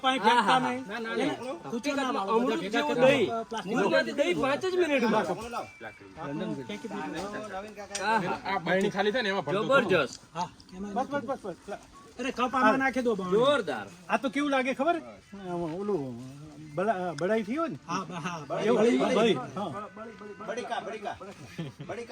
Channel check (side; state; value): both; identical; correlation 1.00